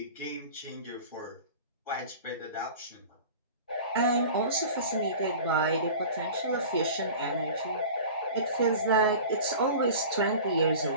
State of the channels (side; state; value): both; inverted; correlation -0.38